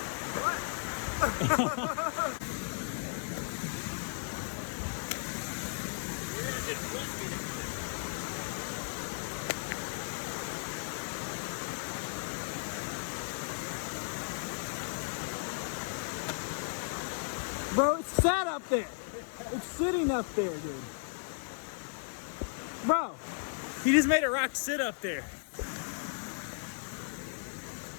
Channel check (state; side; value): silent; right; 54 dB below the other